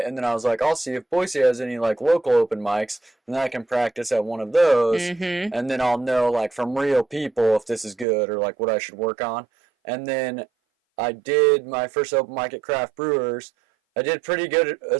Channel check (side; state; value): left; drops out; at 8.1 s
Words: and then I was like, I'll see if Boise has any, like, local open mics, and then I can practice at one of those, and then I'll know, like, from real people if this is good or, like, what I should work on. And then I did my first open mic at Craft Brewers. I did pretty good,